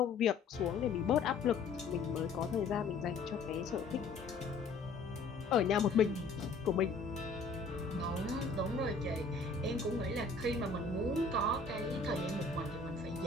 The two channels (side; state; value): right; quieter; 4.1 dB